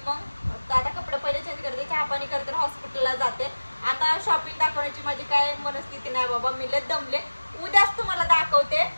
मग आता कपडे पहिले चेंज करते, चहा पाणी करते, हॉस्पिटलला जाते. आता शॉपिंग दाखवण्याची माझी काय मनस्थिती नाही बाबा, मी लय दमले. उद्याच तुम्हाला दाखवते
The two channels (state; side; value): inverted; both; correlation -1.00